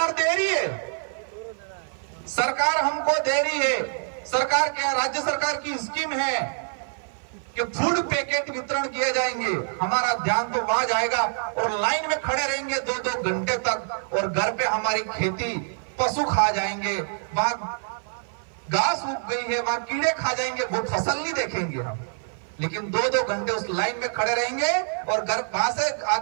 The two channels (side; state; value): left; silent; 55 dB below the other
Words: दे रही है, सरकार हमको दे रही है। सरकार के, राज्य सरकार की स्कीम है कि फूड पैकेट वितरण किए जाएंगे। हमारा ध्यान तो वहां जाएगा और लाइन में खड़े रहेंगे 2-2 घंटे तक, और घर पे हमारी खेती पशु खा जाएंगे, वहां घास उग गई है, वहां कीड़े खा जाएंगे, वो फसल नहीं देखेंगे हम। लेकिन 2-2 घंटे उस लाइन में खड़े रहेंगे और घर वहां से